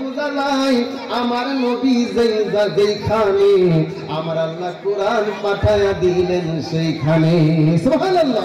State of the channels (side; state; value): both; identical; correlation 1.00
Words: যায় আমার নবী যেইখানে আমার আল্লাহ কোরআন পাঠায়া দিলেন সেইখানে